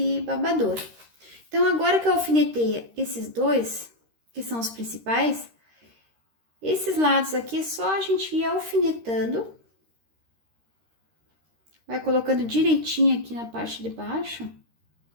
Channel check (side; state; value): left; late; 13 ms